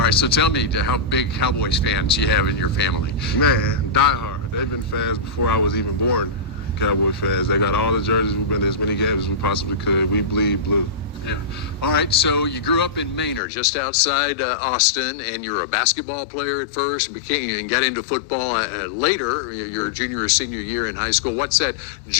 right, so tell me how big Cowboys fans you have in your family. Man, diehard. They've been fans before I was even born. Cowboy fans. They got all the jerseys. We've been to as many games as we possibly could. We bleed blue. Yeah. All right, so you grew up in Manor, just outside Austin, and you're a basketball player at first, and got into football later, your junior or senior year in high school. What's that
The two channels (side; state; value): right; drops out; at 13.4 s